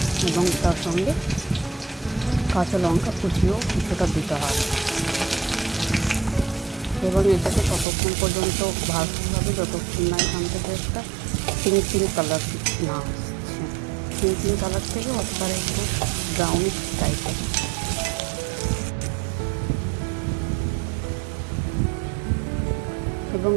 এবং তার সঙ্গে কাঁচা লঙ্কা কুচিও কিছুটা দিতে হবে। এবং এটাকে ততক্ষণ পর্যন্ত ভাজতে হবে যতক্ষণ না এখান থেকে একটা পিঙ্ক কালার না আসছে। পিঙ্ক কালার থেকে অতবার একটু ব্রাউনিশ টাইপের। এবং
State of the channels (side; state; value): left; drops out; at 7.9 s